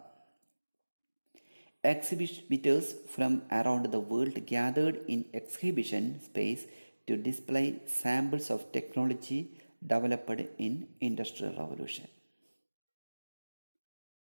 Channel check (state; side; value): inverted; both; correlation -1.00